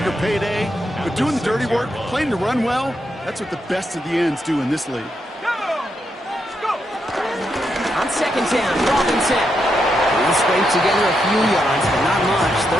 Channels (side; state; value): both; normal; correlation 0.82